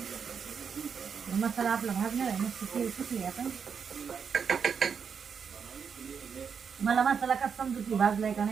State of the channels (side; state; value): left; quieter; 6.6 dB